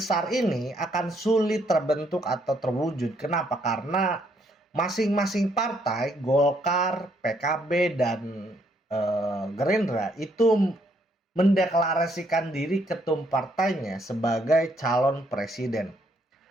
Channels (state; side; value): normal; both; correlation 0.71